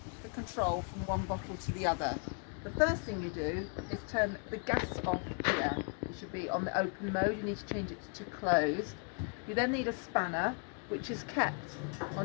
the control from one bottle to the other. The first thing you do is turn the gas off here. It should be on the open mode. You need to change it to closed. You then need a spanner, which is kept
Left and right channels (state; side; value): quieter; right; 39.3 dB